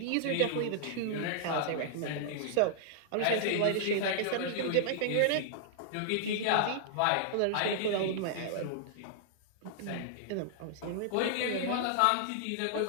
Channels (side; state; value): both; different; correlation -0.01